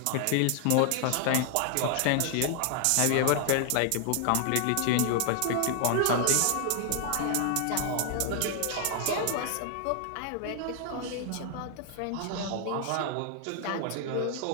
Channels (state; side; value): different; both; correlation 0.00